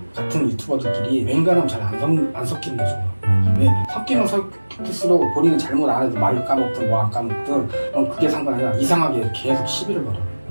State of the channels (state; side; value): inverted; both; correlation -1.00